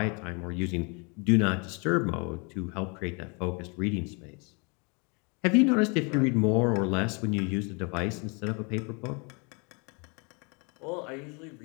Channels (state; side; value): quieter; right; 32.2 dB